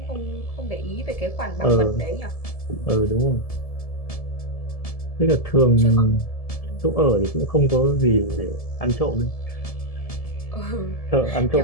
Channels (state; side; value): late; right; 1.7 ms